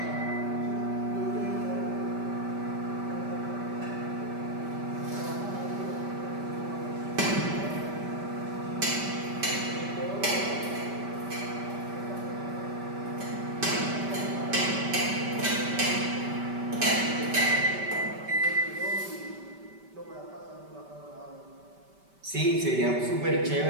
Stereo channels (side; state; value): left; late; 5.1 ms